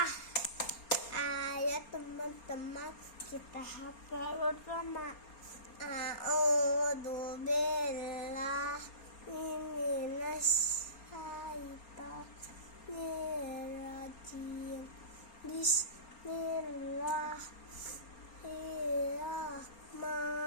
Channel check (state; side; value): late; right; 4.3 ms